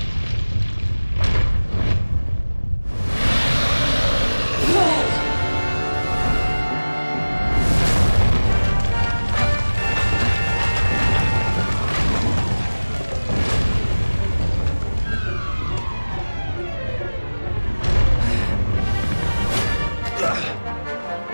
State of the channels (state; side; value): inverted; both; correlation -1.00